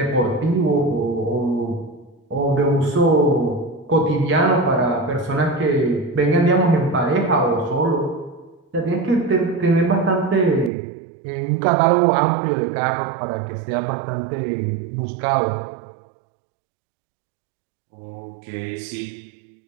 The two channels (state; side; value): drops out; left; at 10.7 s